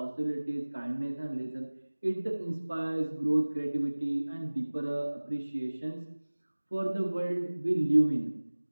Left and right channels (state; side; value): inverted; both; correlation -1.00